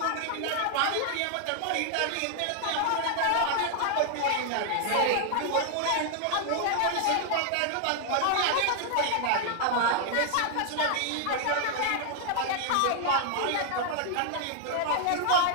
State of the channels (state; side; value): different; both; correlation 0.00